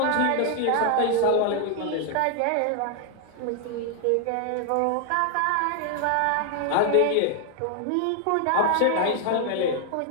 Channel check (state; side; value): different; both; correlation 0.00